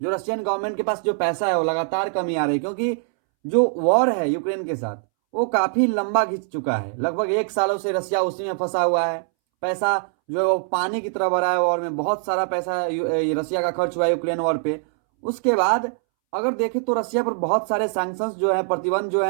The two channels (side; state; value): left; silent; 64 dB below the other